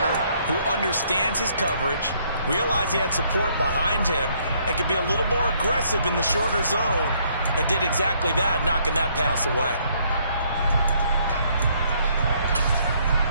who understands his coverage, realized he had support behind him, and could be a little more aggressive in the shorter zone, and did exactly that, knocking that pass away.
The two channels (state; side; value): inverted; both; correlation -0.67